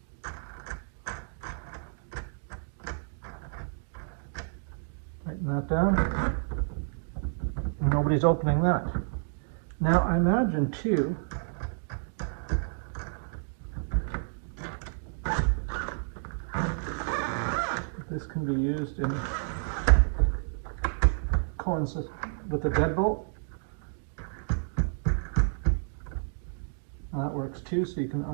Tighten that down. And nobody's opening that. Now I imagine too, this can be used in coincides with the deadbolt. That works too, so you can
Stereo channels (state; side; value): silent; left; digital silence